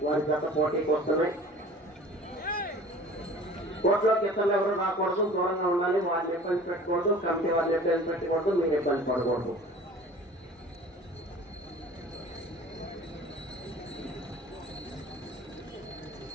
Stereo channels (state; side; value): normal; both; correlation 0.44